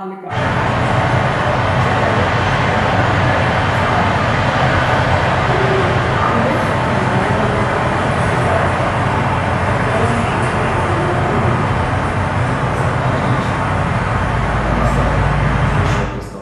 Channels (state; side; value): identical; both; correlation 1.00